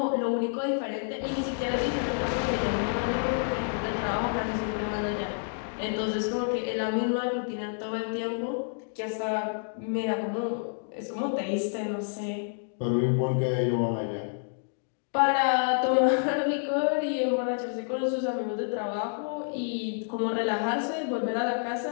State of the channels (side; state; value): right; silent; digital silence